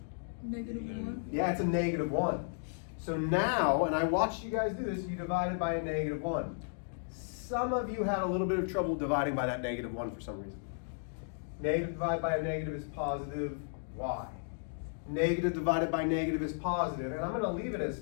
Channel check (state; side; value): silent; right; digital silence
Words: -1. Yeah, it's a -1. So now, and I watched you guys do this, you divided by a -1. Some of you had a little bit of trouble dividing by that -1 for some reason. Negative divided by a negative is positive y. Negative divided by negative is positive, and I'm going to leave it as